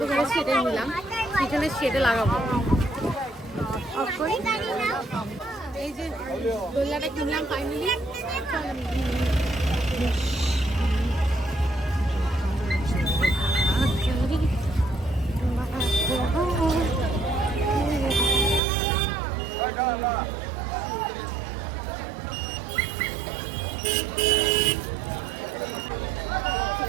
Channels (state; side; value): drops out; left; at 18.6 s